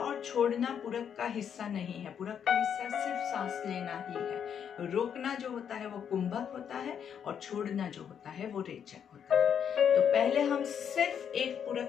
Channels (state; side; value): quieter; right; 8.1 dB